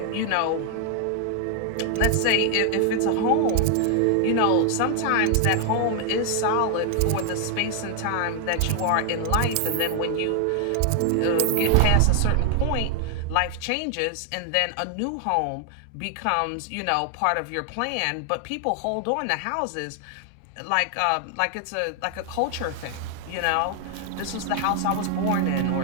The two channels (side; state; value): both; different; correlation 0.00